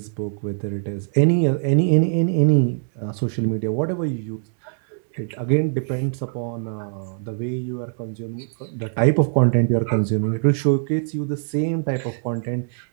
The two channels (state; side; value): silent; left; digital silence